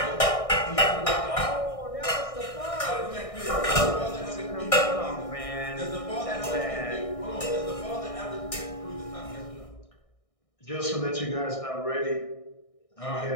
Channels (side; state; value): right; late; 1.6 ms